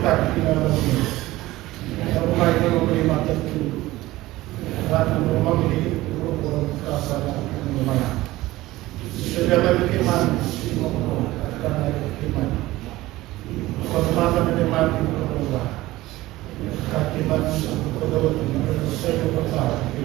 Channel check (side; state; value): left; quieter; 17.7 dB